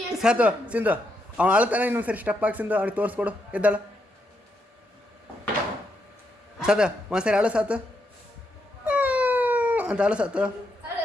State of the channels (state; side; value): normal; both; correlation 0.80